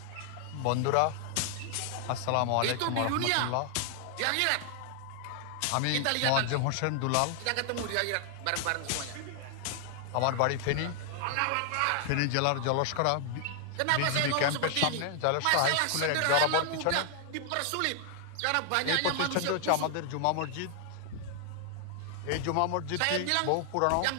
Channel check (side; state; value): both; different; correlation 0.00